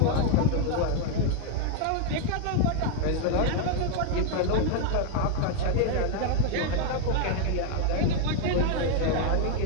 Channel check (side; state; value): both; different; correlation 0.01